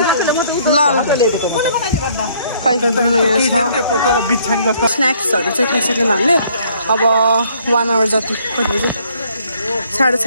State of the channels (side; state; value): both; inverted; correlation -0.63